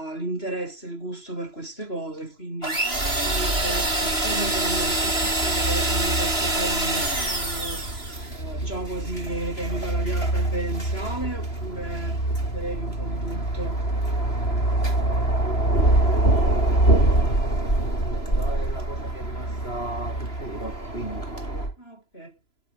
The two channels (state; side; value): late; right; 3.0 ms